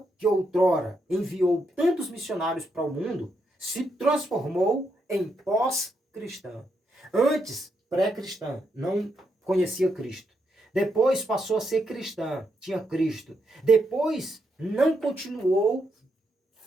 que outrora enviou tantos missionários para o mundo, se transformou em pós-cristã. Antes, pré-cristã, não conhecia Cristo. Depois passou a ser cristã, tinha Cristo. Depois não continuou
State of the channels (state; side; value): normal; both; correlation 0.80